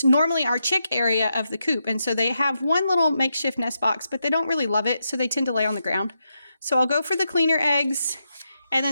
normally our chick area of the coop. And so they have one little makeshift nest box, but they don't really love it. So they tend to lay on the ground. So I'll go for the cleaner eggs. And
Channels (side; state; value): both; inverted; correlation -0.84